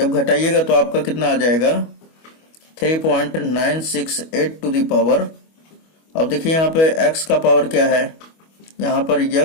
घटाइएगा तो आपका कितना आ जाएगा 3.968 टू दी पावर। अब देखिए यहाँ पे x का पावर क्या है, यहाँ पर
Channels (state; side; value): late; right; 25 ms